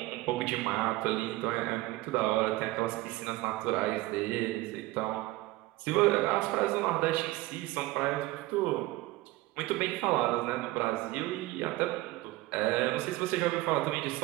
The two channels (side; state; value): left; quieter; 19.0 dB